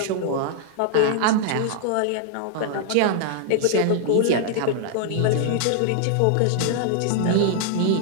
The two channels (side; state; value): both; different; correlation -0.01